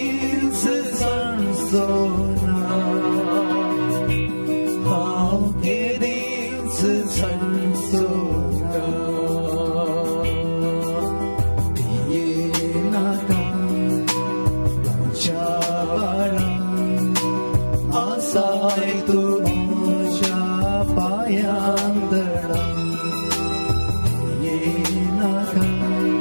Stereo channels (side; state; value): both; inverted; correlation -1.00